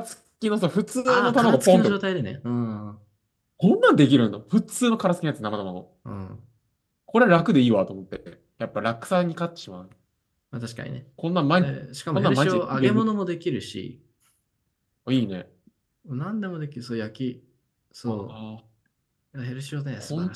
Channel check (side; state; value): both; identical; correlation 1.00